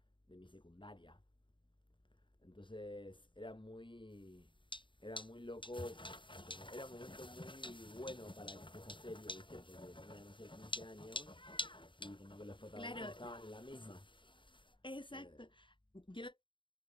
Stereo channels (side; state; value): right; late; 0.24 ms